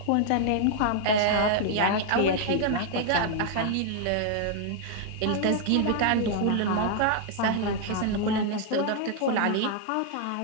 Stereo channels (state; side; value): different; both; correlation 0.00